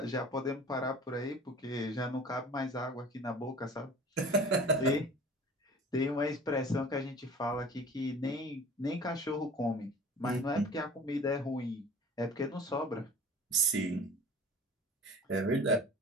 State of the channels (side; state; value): both; normal; correlation 0.43